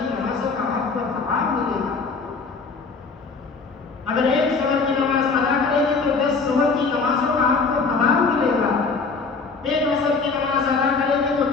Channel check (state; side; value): quieter; right; 4.5 dB